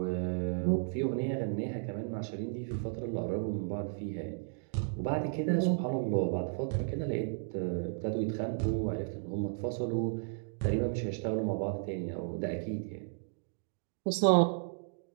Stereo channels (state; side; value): silent; left; digital silence